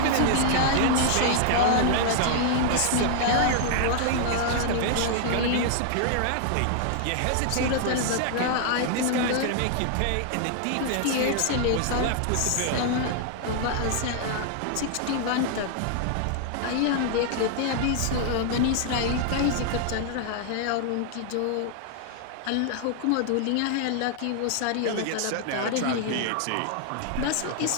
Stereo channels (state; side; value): different; both; correlation -0.01